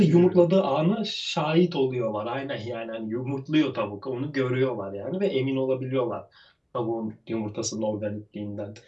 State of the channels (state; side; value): identical; both; correlation 1.00